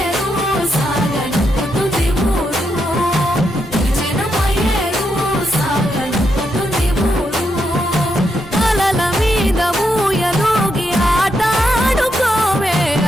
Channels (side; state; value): both; normal; correlation 0.81